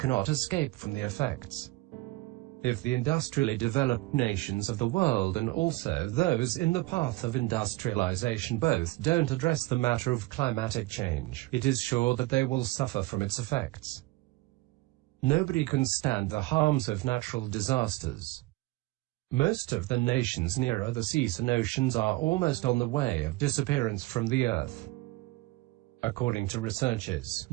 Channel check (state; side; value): quieter; left; 20.2 dB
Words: escape from the effects. If the industrially developed nations of the world and also those in the path of industrialization both don't address the matter of climatic change, it is sure that they will suffer from its effects. Nobody can stand the harms of natural disasters. Most of the nations nearer the seas and oceans are almost on the way of disappearance from the earth. According to researchers,